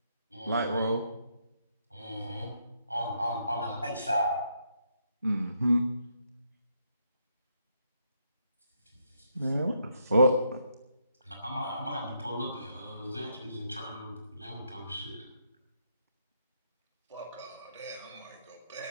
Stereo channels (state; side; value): inverted; both; correlation -0.76